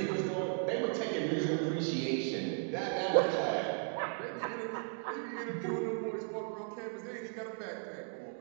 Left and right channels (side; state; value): left; silent; 54 dB below the other